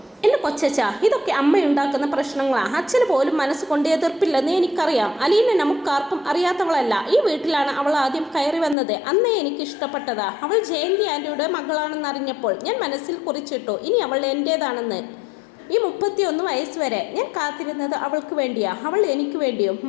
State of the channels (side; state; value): right; drops out; at 8.8 s